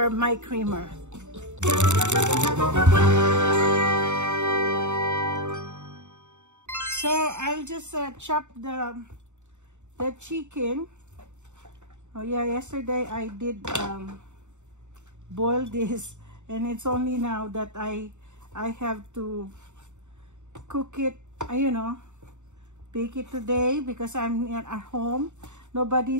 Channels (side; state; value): left; late; 0.84 ms